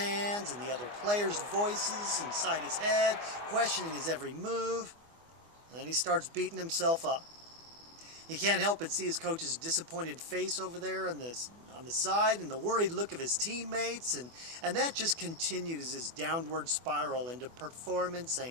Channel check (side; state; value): left; late; 24 ms